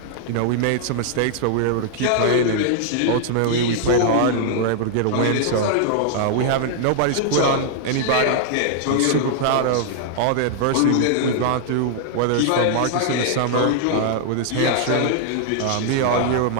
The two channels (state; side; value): different; both; correlation -0.01